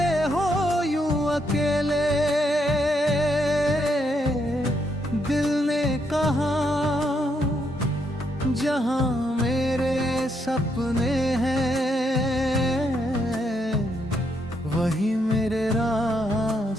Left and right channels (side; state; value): both; normal; correlation 0.77